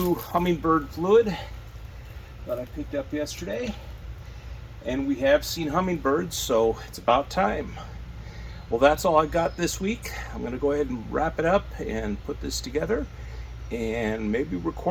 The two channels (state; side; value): identical; both; correlation 1.00